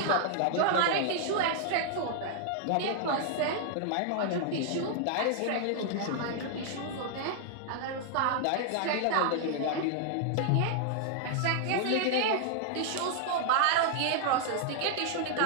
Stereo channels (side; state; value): both; different; correlation 0.00